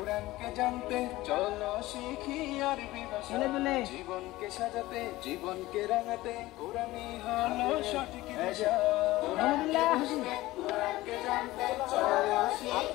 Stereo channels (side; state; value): right; quieter; 17.9 dB